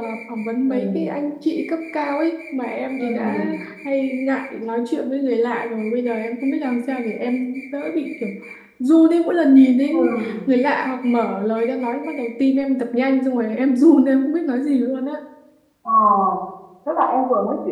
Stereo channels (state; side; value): identical; both; correlation 1.00